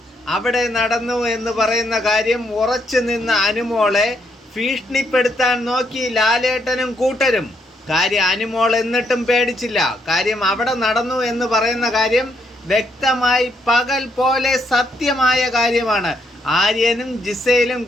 അവിടെ നടന്നു എന്ന് പറയുന്ന കാര്യം ഉറച്ചു നിന്ന അനുമോളെ ഭീഷണിപ്പെടുത്താൻ നോക്കി ലാലേട്ടനും കൂട്ടരും. കാര്യം അനുമോൾ എന്നിട്ടും പേടിച്ചില്ല. കാര്യം അവിടെ നടന്നു എന്ന് പറയുന്ന കാര്യം വ്യക്തമായി പകൽ പോലെ സത്യമായ കാര്യമാണ്. ആര്യനും ജിസയിലും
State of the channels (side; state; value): both; normal; correlation 0.75